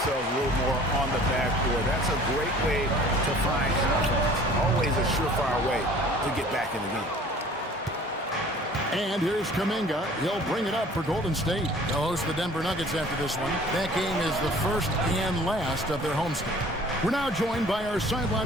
a little more on the backboard. That's a great way to find confidence. Always a surefire way to get back in the game. And here's Kuminga. He'll bring it up for Golden State. They'll host the Denver Nuggets after this one. That game is the first and last of their homestand. We're now joined by our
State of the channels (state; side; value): normal; both; correlation 0.49